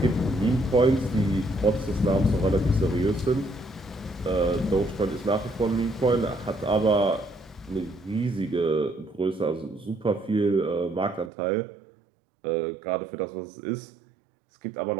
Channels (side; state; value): left; drops out; at 11.3 s